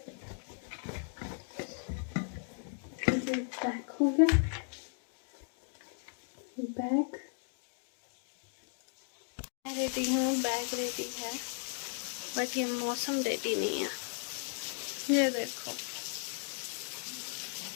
पैक हो गया बैग, मैं रेडी हूँ, बैग रेडी है, बट ये मौसम रेडी नहीं है। ये देखो,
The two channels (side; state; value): right; silent; 54 dB below the other